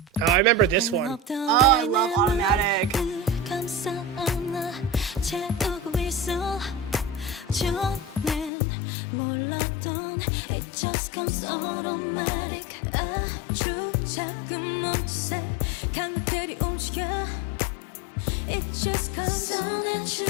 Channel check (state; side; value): drops out; right; at 8.5 s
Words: Oh, I remember this one. Oh, I love Automatic. I literally have like